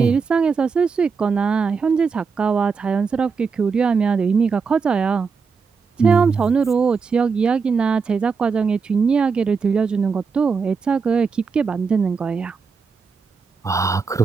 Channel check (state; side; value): quieter; left; 5.3 dB